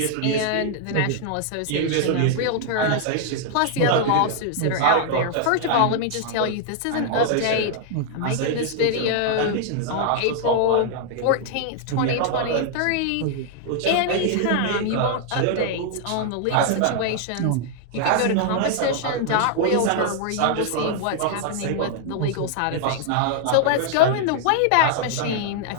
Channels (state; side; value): different; both; correlation 0.00